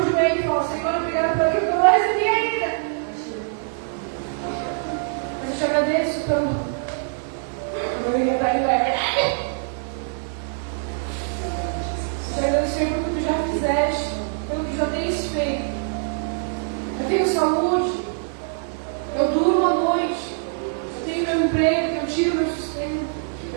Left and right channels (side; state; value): left; silent; 55 dB below the other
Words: joelho e fala, Senhor, obrigado por aquilo que eu não recebi ainda. Mas eu te agradeço pelo meu ia estar indo, é verdade. Eu te agradeço, Senhor, pelo que tu já fizeste, pelo que já tens feito. Eu tenho saúde, eu durmo à noite, eu tenho meu emprego, eu tiro meu sustento,